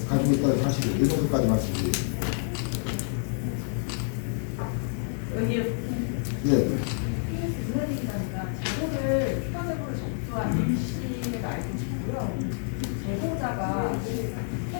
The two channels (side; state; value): right; silent; 59 dB below the other